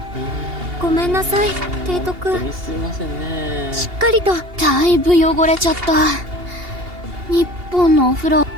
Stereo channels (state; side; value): late; left; 2.8 ms